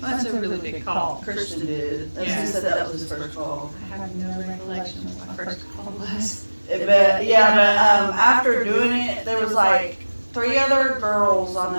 That's a really big call. Christian did. As Yeah. he said, that was his first call. I have no recollection of what my first call was. But after doing it, there was like 3 other girls I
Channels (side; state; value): both; inverted; correlation -1.00